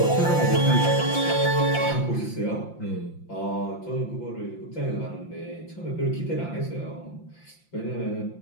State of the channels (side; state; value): right; late; 5.8 ms